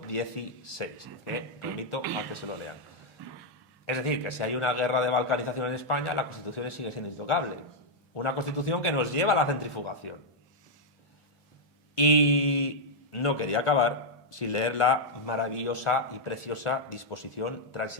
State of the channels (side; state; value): both; normal; correlation -0.03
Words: que remito a que se lo lean. Es decir, que si hay una guerra de balcanización en España, la Constitución sigue siendo intocable. Una Constitución que nos lleva a la centrifugación. Y no quería acabar sin leer la maravillosa y preciosa disposición